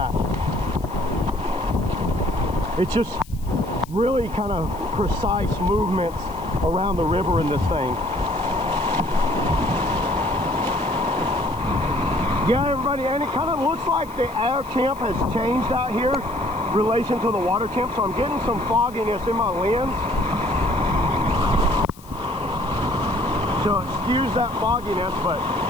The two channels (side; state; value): left; noise; hiss, 23 dB below the sound